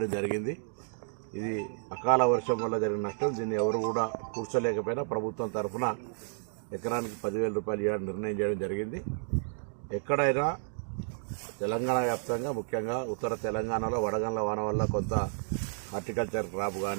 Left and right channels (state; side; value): silent; left; digital silence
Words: జరిగింది. ఇది అకాల వర్షం వల్ల జరిగిన నష్టం. దీన్ని ఎవరు కూడా కూర్చోలేకపోయినా ప్రభుత్వం తరఫున ఎకరానికి 10,000 రూపాయలు ఇవ్వాలని నిర్ణయం చేయడం జరిగింది. ఎక్కడైనా తెలంగాణ వ్యాప్తంగా ముఖ్యంగా ఉత్తర తెలంగాణలో వడగండ్ల వాన వల్ల కొంత హార్టికల్చర్ క్రాప్